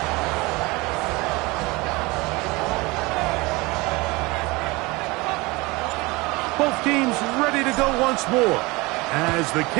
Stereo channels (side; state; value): left; quieter; 23.7 dB